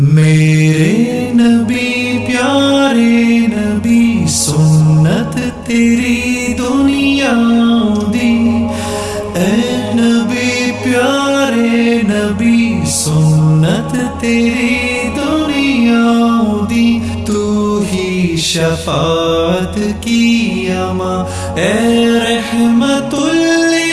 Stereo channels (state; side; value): identical; both; correlation 1.00